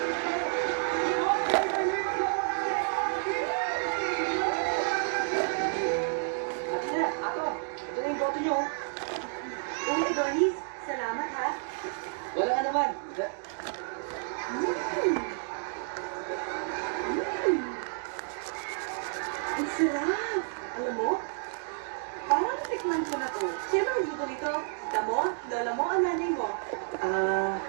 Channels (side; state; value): left; silent; digital silence